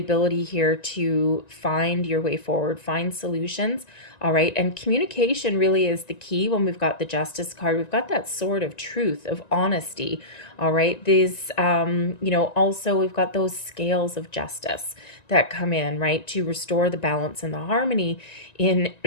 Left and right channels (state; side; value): late; right; 1.9 ms